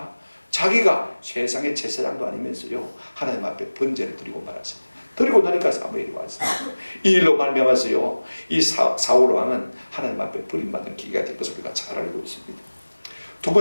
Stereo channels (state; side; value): inverted; both; correlation -1.00